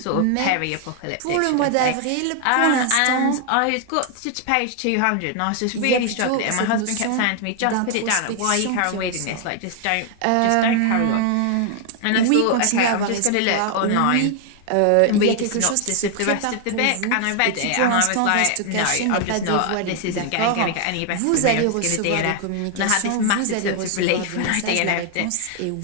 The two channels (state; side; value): different; both; correlation 0.00